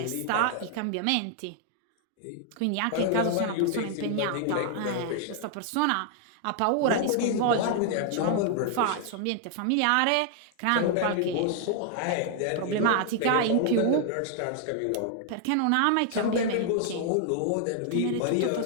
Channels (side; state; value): both; different; correlation 0.00